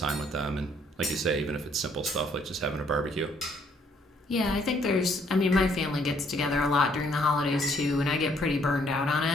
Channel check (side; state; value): both; normal; correlation 0.66